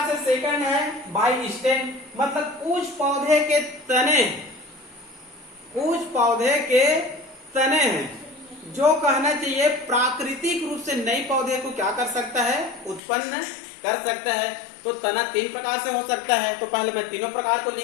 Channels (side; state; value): right; drops out; at 13.0 s